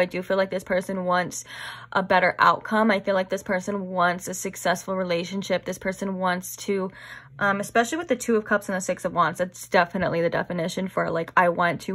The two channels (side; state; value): both; identical; correlation 1.00